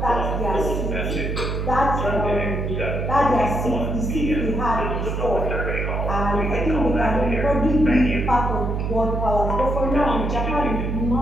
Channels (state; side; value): noise; right; hum, 1 dB below the sound